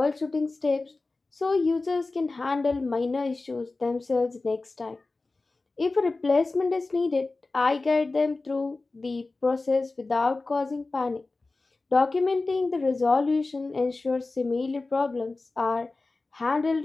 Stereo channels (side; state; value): right; quieter; 3.4 dB